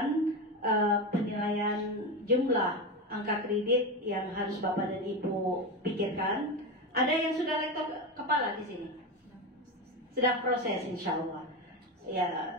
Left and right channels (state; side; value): normal; both; correlation 0.17